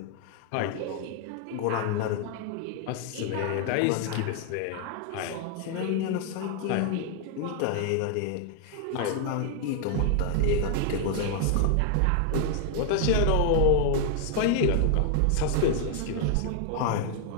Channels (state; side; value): different; both; correlation 0.00